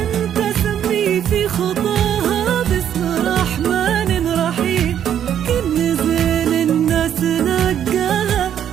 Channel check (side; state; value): left; quieter; 9.7 dB